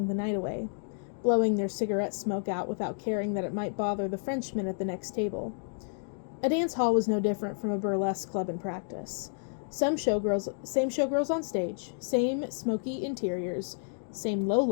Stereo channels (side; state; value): right; silent; digital silence